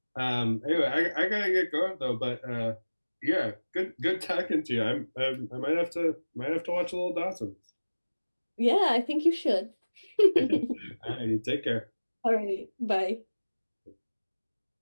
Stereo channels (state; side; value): inverted; both; correlation -1.00